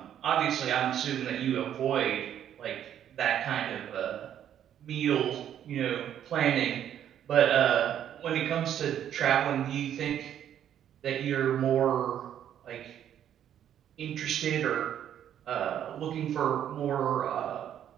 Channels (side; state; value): left; quieter; 10.1 dB